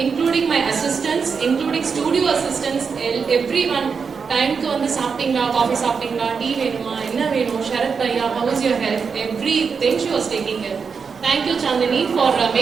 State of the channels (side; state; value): left; quieter; 5.7 dB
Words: including my assistants, including studio assistants, everyone. Time ku vandu saaptinga, coffee saaptinga, tea venuma, enna venum, Sharath bhaiya, how is your health? Everything she was taking care. Thank you, Chandni, for